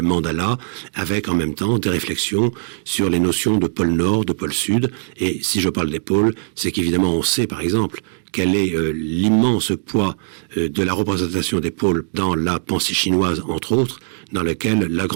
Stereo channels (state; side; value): silent; left; 65 dB below the other